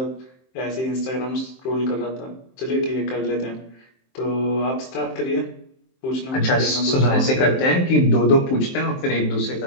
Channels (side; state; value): right; late; 23 ms